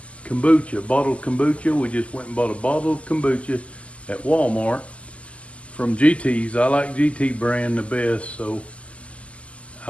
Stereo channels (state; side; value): late; right; 0.062 ms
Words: kombucha, bottled kombucha. We just went and bought a bottle of kombucha at Walmart from GT's. I like GT brand the best, so